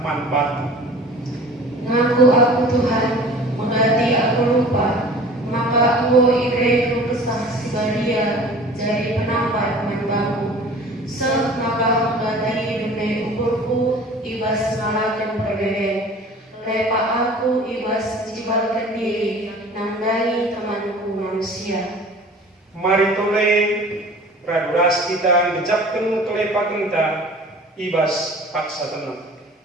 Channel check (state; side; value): normal; both; correlation 0.44